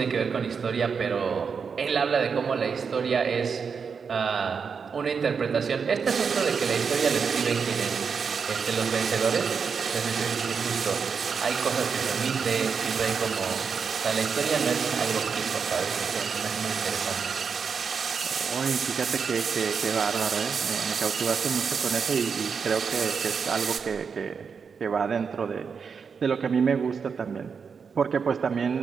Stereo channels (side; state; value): left; quieter; 6.0 dB